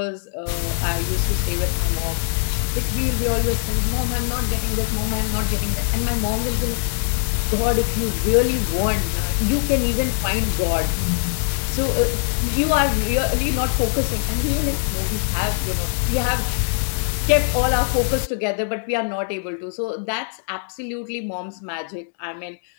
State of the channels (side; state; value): right; silent; digital silence